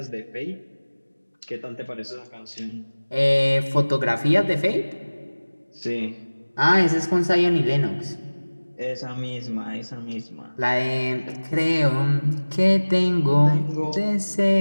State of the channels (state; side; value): inverted; both; correlation -1.00